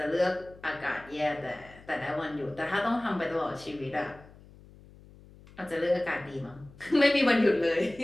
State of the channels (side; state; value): left; noise; hum, 22 dB below the sound